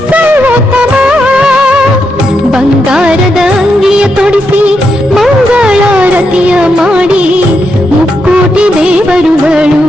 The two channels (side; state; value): both; normal; correlation 0.83